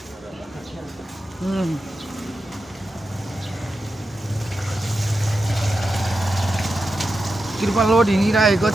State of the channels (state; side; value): normal; both; correlation 0.89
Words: कृपा लोड हिँडिरहेको